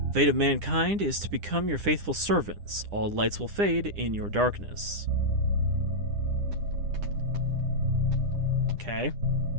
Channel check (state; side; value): late; left; 9.9 ms